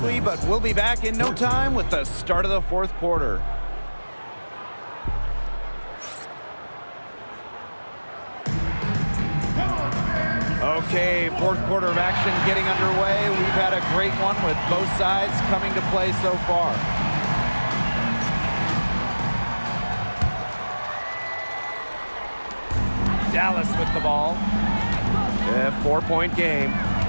but we'll be back in no time with the start of the fourth quarter. Okay, fourth quarter of action getting underway. We've had a great one with both sides coming to play so far. Dallas with the ball. A 4-point game.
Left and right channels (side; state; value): both; inverted; correlation -1.00